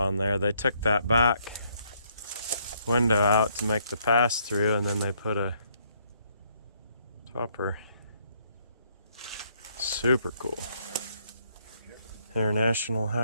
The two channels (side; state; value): both; inverted; correlation -0.70